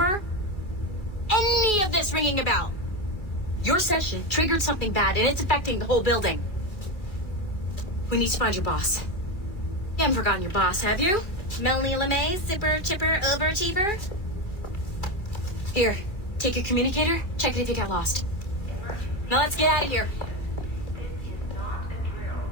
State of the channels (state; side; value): late; right; 2.4 ms